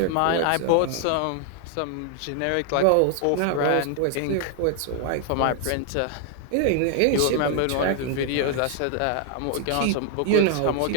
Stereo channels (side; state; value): both; different; correlation 0.00